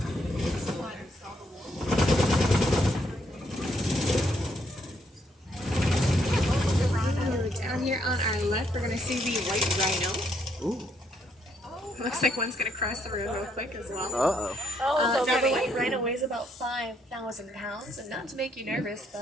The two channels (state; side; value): normal; both; correlation 0.73